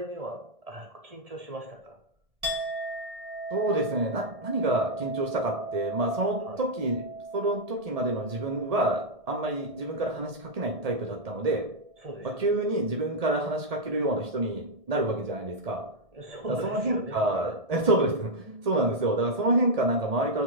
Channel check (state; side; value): late; left; 1.7 ms